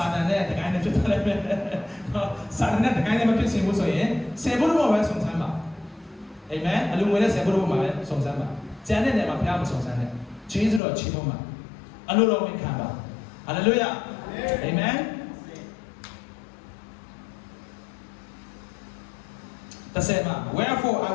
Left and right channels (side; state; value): right; drops out; at 10.8 s